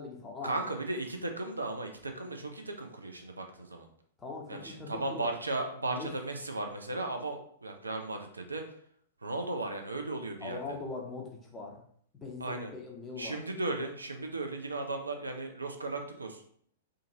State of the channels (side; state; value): both; inverted; correlation -0.57